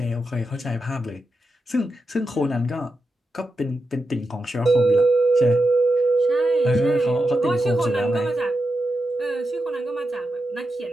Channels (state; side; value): normal; both; correlation 0.88